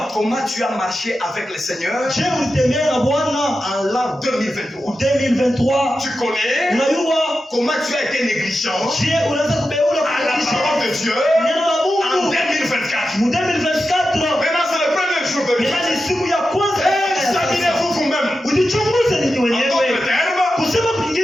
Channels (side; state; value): both; normal; correlation 0.91